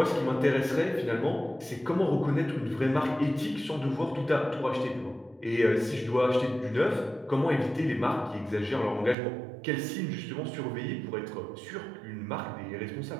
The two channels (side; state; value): left; drops out; at 9.2 s